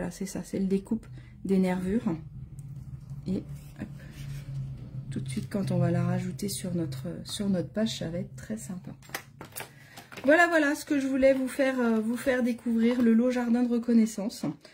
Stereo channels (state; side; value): identical; both; correlation 1.00